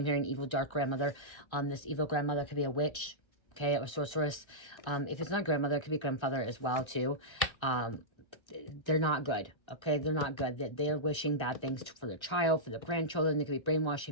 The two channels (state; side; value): late; right; 1.3 ms